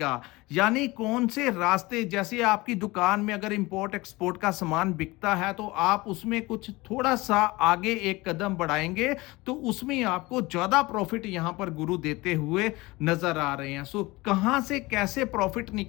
यानी कौन से रास्ते, जैसे आपकी दुकान में अगर इंपोर्ट एक्सपोर्ट का सामान बिकता है तो आप उसमें कुछ थोड़ा सा आगे एक कदम बढ़ाएंगे तो उसमें आपको ज्यादा प्रॉफिट यहां पर गुरु देते हुए नजर आ रहे हैं। सो कहां से कैसे प्रॉफिट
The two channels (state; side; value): quieter; right; 21.8 dB